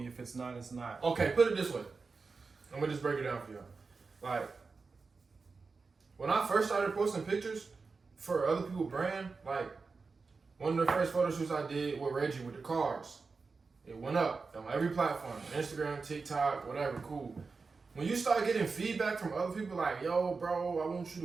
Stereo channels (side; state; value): left; quieter; 4.5 dB